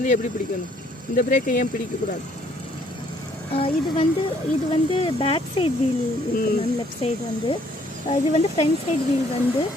எப்படி பிடிக்கணும்? இந்த பிரேக்கை ஏன் பிடிக்கக்கூடாது? இது வந்து பேக் சைடு வீல் இருக்கு மேம். லெஃப்ட் சைடு வந்து இது வந்து ஃப்ரண்ட் சைடு வீல் வந்து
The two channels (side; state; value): both; normal; correlation 0.64